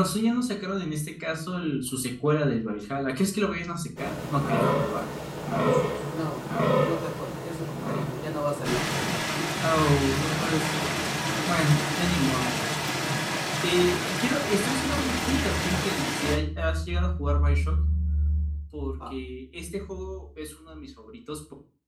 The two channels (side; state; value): both; identical; correlation 1.00